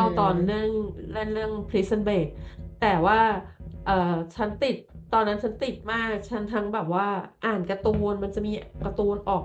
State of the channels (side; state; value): both; identical; correlation 1.00